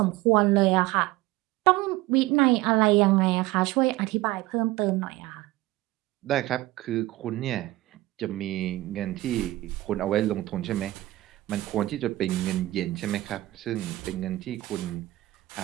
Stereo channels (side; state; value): left; quieter; 17.8 dB